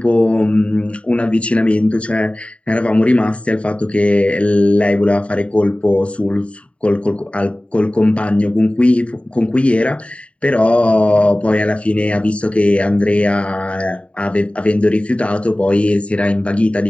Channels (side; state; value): right; late; 0.063 ms